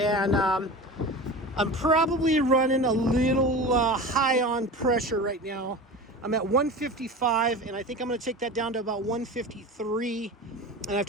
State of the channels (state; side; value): normal; both; correlation 0.32